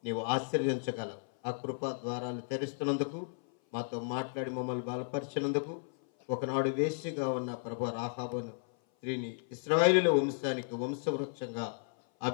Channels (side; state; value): right; silent; 55 dB below the other